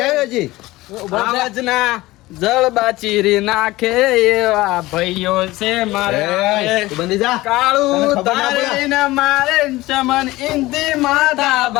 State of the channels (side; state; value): right; quieter; 18.8 dB